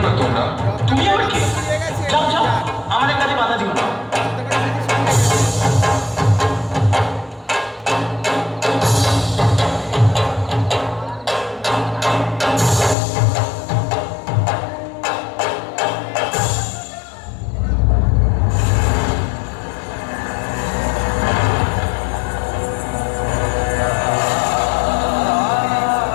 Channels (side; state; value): right; drops out; at 13.0 s